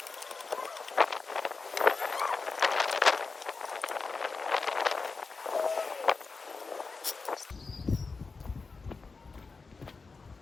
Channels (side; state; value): right; quieter; 4.3 dB